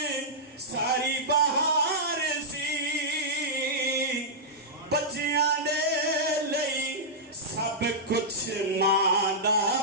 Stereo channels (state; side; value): normal; both; correlation -0.11